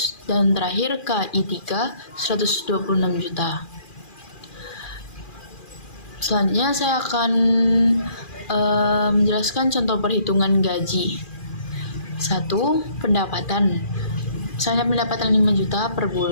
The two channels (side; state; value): right; late; 2.4 ms